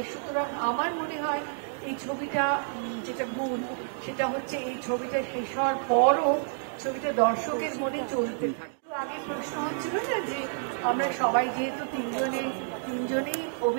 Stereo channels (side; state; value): left; silent; digital silence